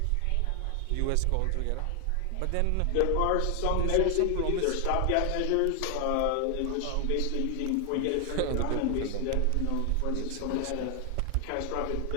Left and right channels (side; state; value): both; different; correlation 0.00